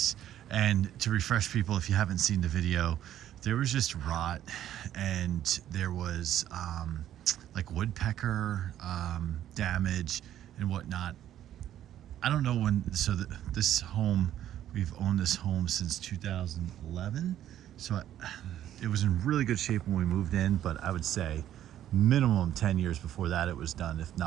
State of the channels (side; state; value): left; quieter; 11.7 dB